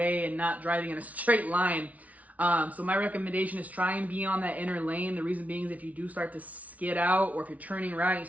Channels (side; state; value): left; late; 0.070 ms